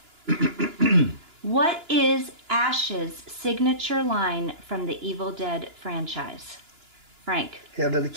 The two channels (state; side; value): late; left; 2.9 ms